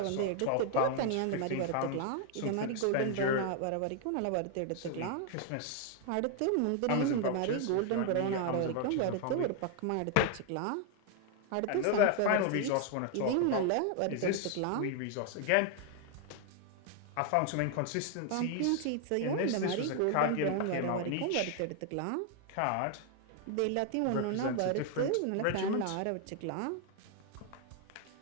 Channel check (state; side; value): different; both; correlation 0.00